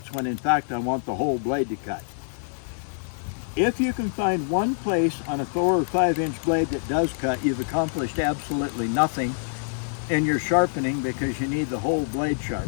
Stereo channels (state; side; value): silent; right; digital silence